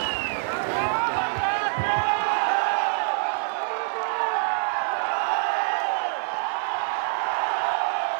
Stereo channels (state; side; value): silent; left; digital silence